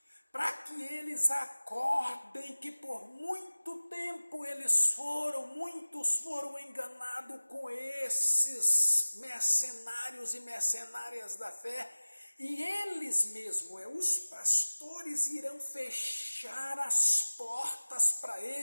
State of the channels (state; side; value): inverted; both; correlation -1.00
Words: para que eles acordem que por muito tempo muitos foram enganados com esses mercenários e mercenárias da fé, e eles mesmos, os pastores, irão fechar as portas para